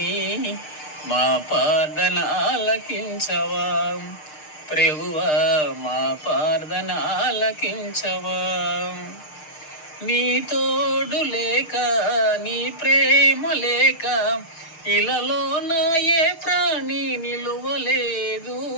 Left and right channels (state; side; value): late; right; 6.6 ms